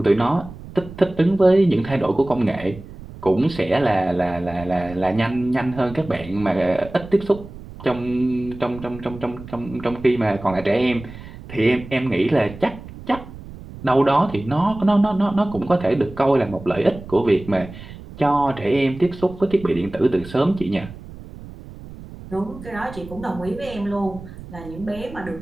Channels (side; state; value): right; noise; rumble, 15 dB below the sound